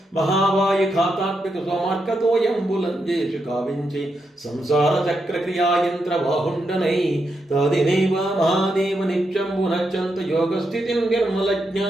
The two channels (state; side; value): normal; both; correlation 0.83